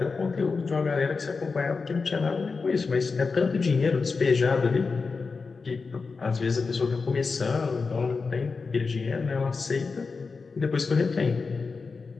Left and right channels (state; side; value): quieter; right; 4.5 dB